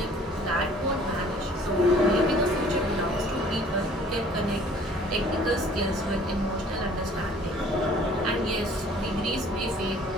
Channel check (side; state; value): both; normal; correlation 0.53